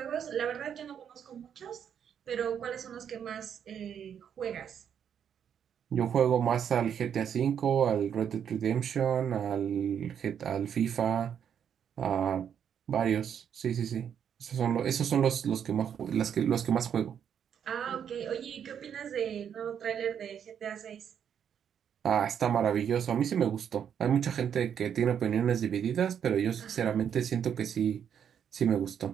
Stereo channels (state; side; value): quieter; left; 8.4 dB